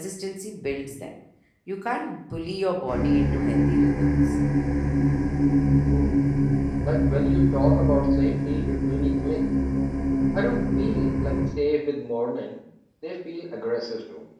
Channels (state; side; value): identical; both; correlation 1.00